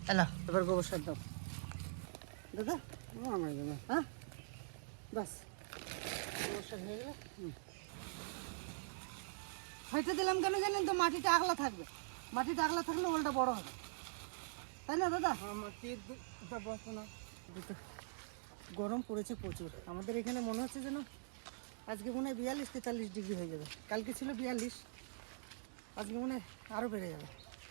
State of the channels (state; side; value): silent; left; digital silence